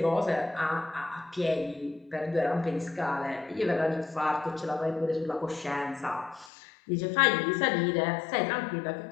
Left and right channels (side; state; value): right; drops out; at 6.5 s